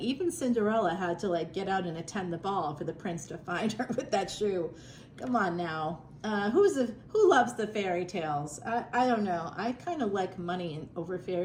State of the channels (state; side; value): identical; both; correlation 1.00